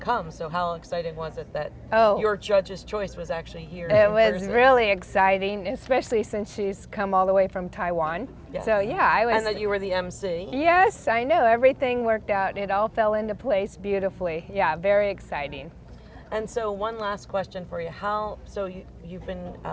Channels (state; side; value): identical; both; correlation 1.00